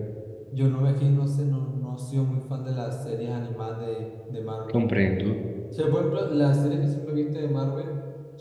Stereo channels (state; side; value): identical; both; correlation 1.00